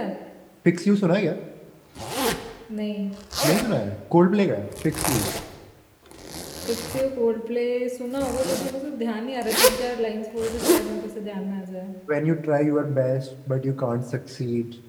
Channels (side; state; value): both; identical; correlation 1.00